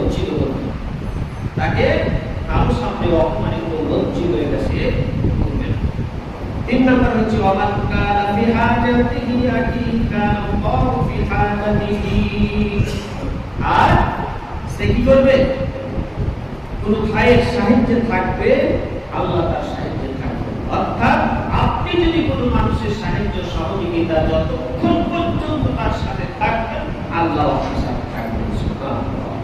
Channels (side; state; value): both; identical; correlation 1.00